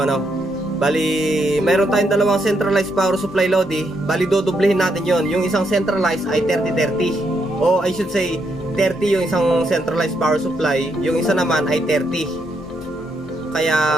ano. Bali, mayroon tayong dalawang centralized power supply Lodi. Bali, dodoblehin natin yon. Yung isang centralized ay 30-30. O I should say 30 yung isang centralized power supply. Yung isa naman ay 30. Kaya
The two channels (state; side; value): normal; both; correlation 0.77